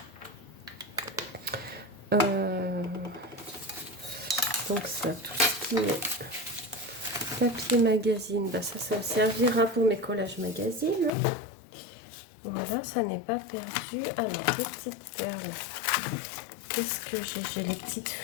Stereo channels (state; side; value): drops out; right; at 11.1 s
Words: Donc ça, tout ce qui est papier magazine, bah ça servira pour mes collages magazines. Hein. Voilà, ça n'est pas perdu. Alors, les petites perles. Qu'est-ce que j'ai? J'ai les petites